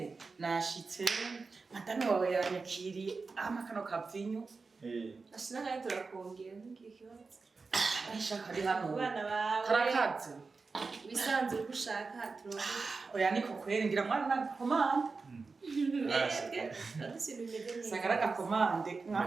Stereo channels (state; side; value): quieter; left; 4.3 dB